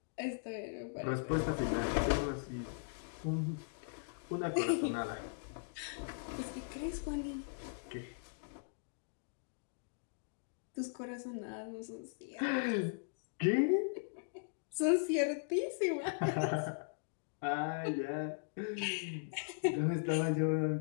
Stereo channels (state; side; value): silent; right; digital silence